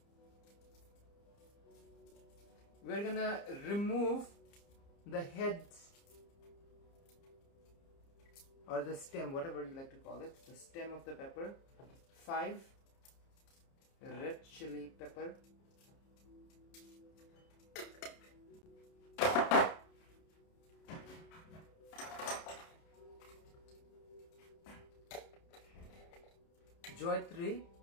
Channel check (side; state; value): right; late; 30 ms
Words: We're gonna remove the head or the stem, whatever you like to call it, the stem of the pepper. 5 red chili pepper. Jawatri